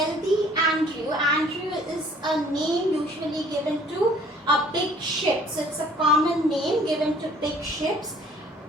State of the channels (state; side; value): normal; both; correlation 0.55